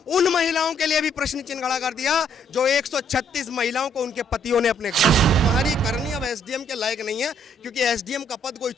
उन महिलाओं के लिए भी प्रश्न चिन्ह खड़ा कर दिया जो 136 महिलाओं को उनके पतियों ने अपने घर। तुम्हारी करनी अब एसडीएम के लायक नहीं है, क्योंकि एसडीएम का पद कोई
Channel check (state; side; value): normal; both; correlation 0.67